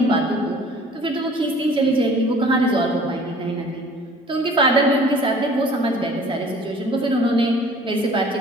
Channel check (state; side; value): normal; both; correlation 0.50